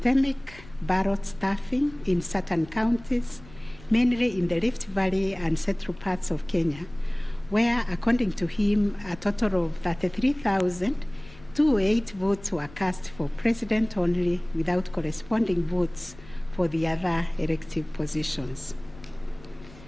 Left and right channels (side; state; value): left; noise; rumble, 21 dB below the sound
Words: ballot stuffing in certain counties, mainly in the Rift Valley and central parts of Kenya, where, according to him, a total of 33,208 votes were cast for president only, without corresponding votes for the other elective positions.